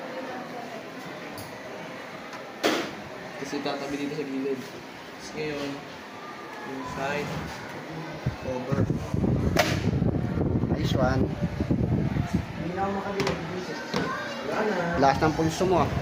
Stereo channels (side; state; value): both; identical; correlation 1.00